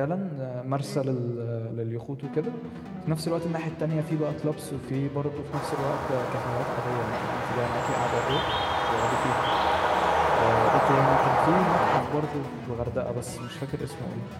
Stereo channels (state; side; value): identical; both; correlation 1.00